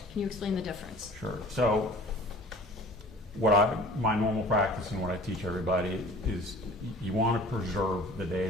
Can you explain the difference? Sure. So my normal practice and what I teach everybody is you want to preserve the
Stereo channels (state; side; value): normal; both; correlation 0.46